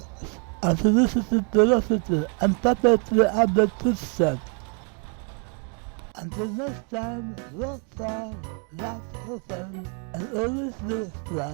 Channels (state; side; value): quieter; left; 38.6 dB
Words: and solicited curiosity and puppetry at the footsteps. Until next time, walk far, laugh often, and always look